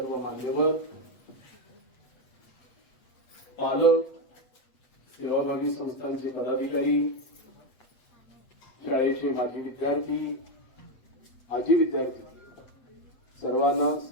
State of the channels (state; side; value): late; right; 8.1 ms